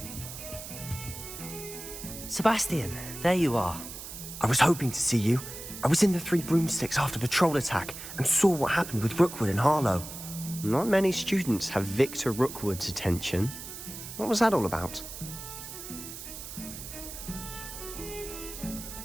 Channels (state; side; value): noise; right; hiss, 11 dB below the sound